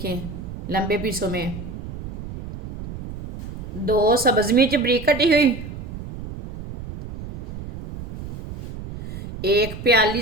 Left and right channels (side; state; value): right; noise; rumble, 10 dB below the sound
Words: लंबे पीसों में। दो सब्ज मिर्च बारीक कटी हुई। एक प्याली